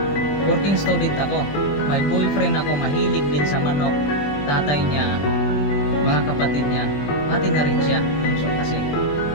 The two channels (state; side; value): late; right; 20 ms